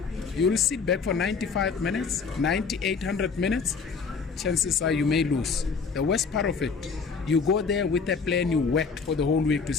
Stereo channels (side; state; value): right; quieter; 5.2 dB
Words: You'll sit back for 95 minutes, 800 minutes. Chances are you may lose. The worst part of it, you go there with a plan you worked for the whole week to